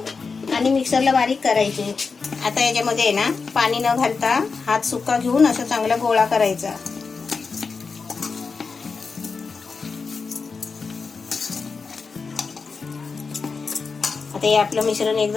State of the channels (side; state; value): right; quieter; 4.8 dB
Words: आणि मिक्सरला बारीक करायचे. आता याच्यामध्ये आहे ना पाणी न घालता हात सुका घेऊन असं चांगला गोळा करायचा. आता हे आपलं मिश्रण